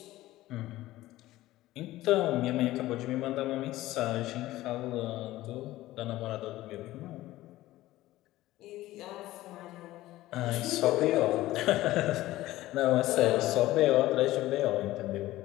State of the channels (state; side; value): quieter; right; 16.4 dB